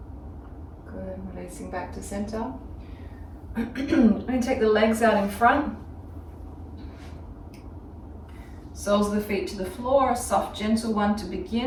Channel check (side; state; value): both; identical; correlation 1.00